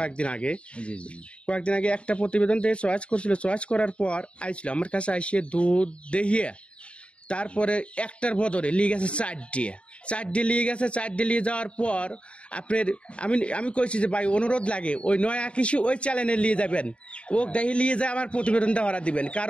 আগে একটা প্রতিবেদন দিয়ে চয়েস করছিল। চয়েস করার পর আইছিল আমার কাছে আইসিয়ে দুধ দেখিয়ে তারপরে একটার বদলে লিয়ে গেছে চারটে লিয়ে গেছে। চারটে নিয়ে যাওয়ার পর আপনার আমি কইছি যে ভাই অনুরোধ লাগে ওই নয়া কৃষি ওই চ্যানেলে নিয়ে যাবেন, ও দেখি নিয়ে যায় আমার প্রতিবেদনটা ওরা দিবেন,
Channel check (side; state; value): right; late; 0.059 ms